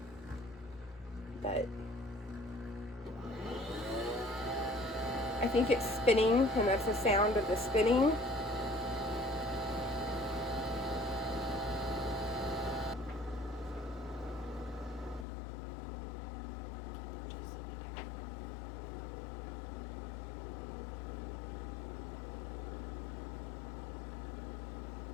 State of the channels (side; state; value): right; drops out; at 15.2 s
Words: but I think it's spinning, and that's the sound of the spinning.